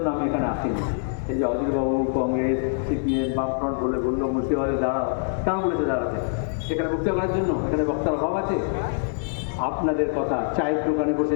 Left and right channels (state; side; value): silent; right; digital silence